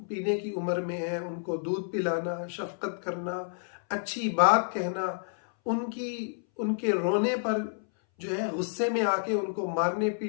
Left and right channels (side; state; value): right; silent; 58 dB below the other